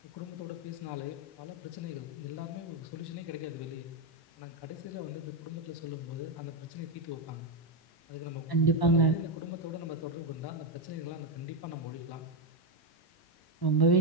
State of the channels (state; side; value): late; right; 1.1 ms